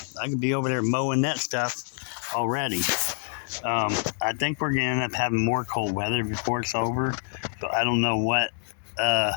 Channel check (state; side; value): silent; right; 61 dB below the other